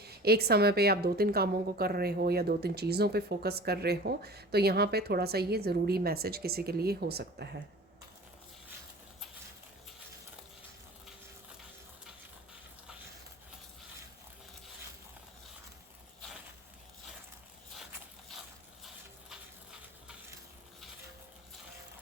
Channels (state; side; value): normal; both; correlation 0.40